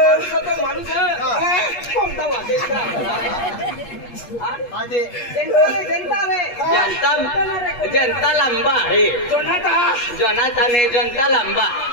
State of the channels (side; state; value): right; late; 8.4 ms